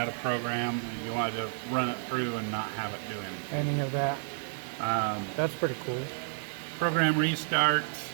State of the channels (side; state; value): left; silent; digital silence